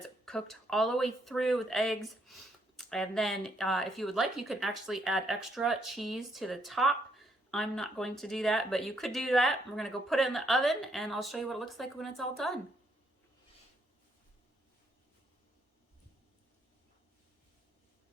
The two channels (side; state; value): both; normal; correlation 0.73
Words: cooked all the way through with eggs. And then if you would like, you can actually add extra cheese to the top. I'm not going to do that, but you could do that. We're going to go put it in the oven and I'll show you what it looks like when it's all done.